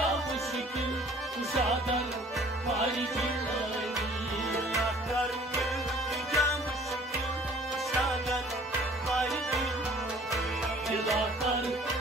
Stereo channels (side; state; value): both; normal; correlation 0.53